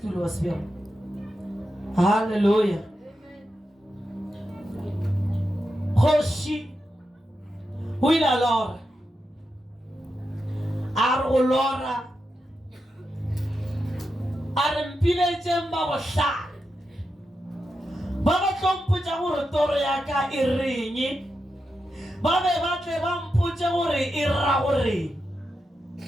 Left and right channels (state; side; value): normal; both; correlation 0.88